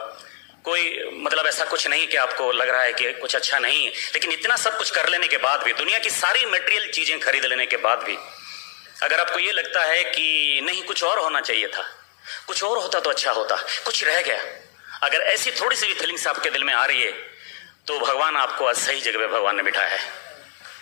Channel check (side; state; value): right; silent; digital silence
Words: कोई मतलब ऐसा कुछ नहीं कि आपको लग रहा है कि कुछ अच्छा नहीं है, लेकिन इतना सब कुछ कर लेने के बाद भी, दुनिया की सारी मटेरियल चीजें खरीद लेने के बाद भी, अगर आपको ये लगता है कि नहीं कुछ और होना चाहिए था, कुछ और होता तो अच्छा होता, कुछ रह गया, अगर ऐसी थोड़ी सी भी फीलिंग्स आपके दिल में आ रही है तो भगवान आपको आज सही जगह पे भगवान ने बिठाया है।